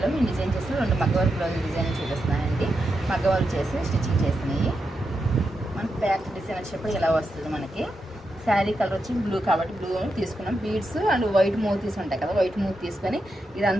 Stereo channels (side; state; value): both; normal; correlation 0.86